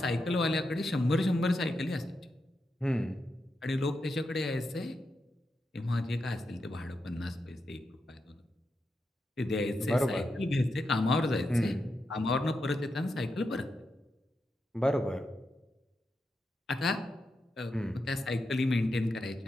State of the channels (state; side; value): normal; both; correlation 0.86